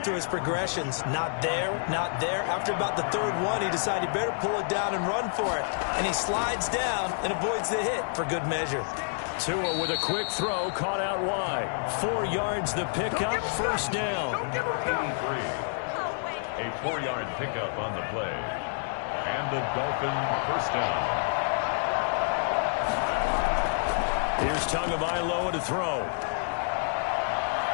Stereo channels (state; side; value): silent; right; digital silence